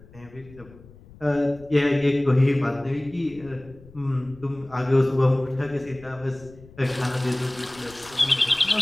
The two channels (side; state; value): left; noise; rumble, 22 dB below the sound